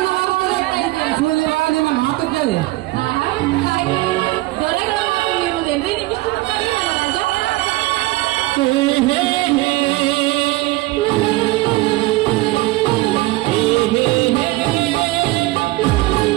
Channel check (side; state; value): left; quieter; 19.8 dB